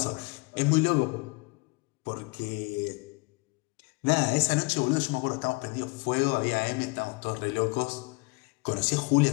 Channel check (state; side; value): quieter; right; 27.2 dB